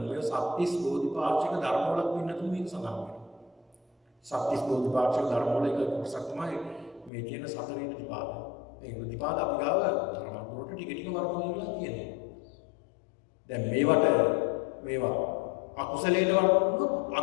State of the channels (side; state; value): right; drops out; at 7.1 s